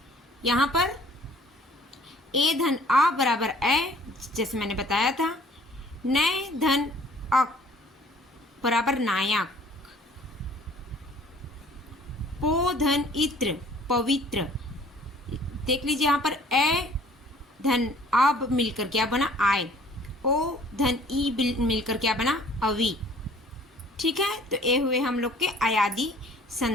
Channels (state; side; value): normal; both; correlation 0.54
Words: यहाँ पर ए धन आ बराबर ए, जैसे मैंने बताया था। नय धन अक बराबर नायक। पो धन इत्र पवित्र। देख लीजिए यहाँ पर ए धन अब मिलकर क्या बना, आय। ओ धन ई मिलकर क्या बना, अवि। ठीक है, तो ये हुए हम लोग के अयादि